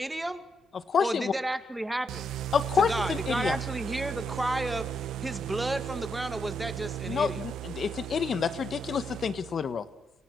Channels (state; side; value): normal; both; correlation 0.78